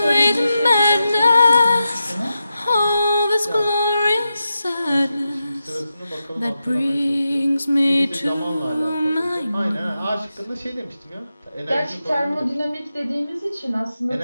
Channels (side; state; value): both; inverted; correlation -0.89